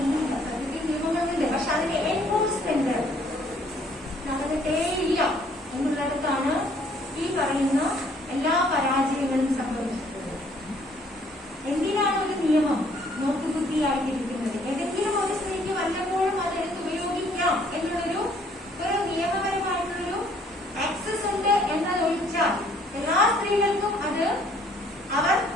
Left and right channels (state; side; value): normal; both; correlation 0.62